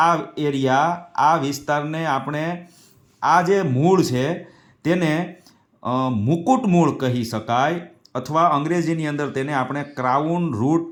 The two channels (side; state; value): both; identical; correlation 1.00